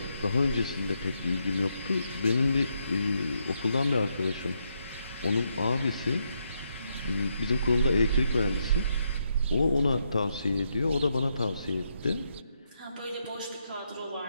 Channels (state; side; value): inverted; both; correlation -0.79